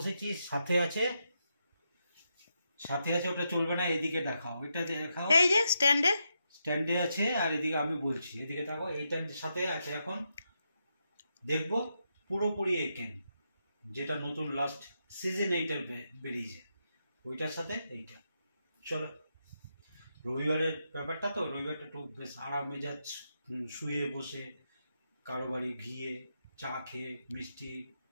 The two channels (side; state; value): both; inverted; correlation -0.83